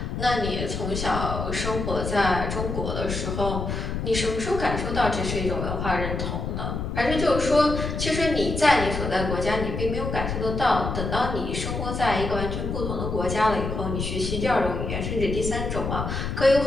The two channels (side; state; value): left; noise; rumble, 3 dB below the sound